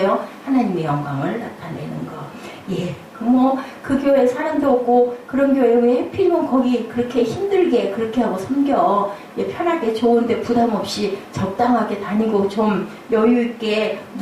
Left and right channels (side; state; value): both; identical; correlation 1.00